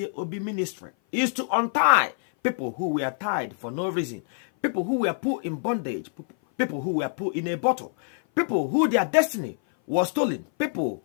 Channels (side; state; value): right; silent; 57 dB below the other